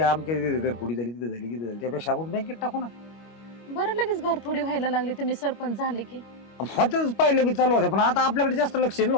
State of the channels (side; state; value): right; late; 25 ms